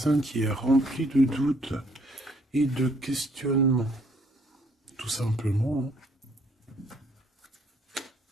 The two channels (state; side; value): normal; both; correlation 0.66